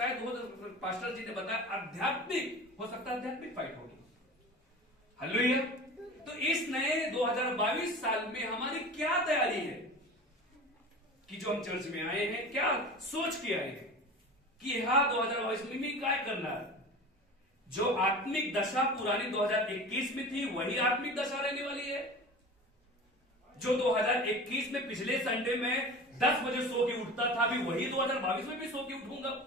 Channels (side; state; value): both; normal; correlation 0.35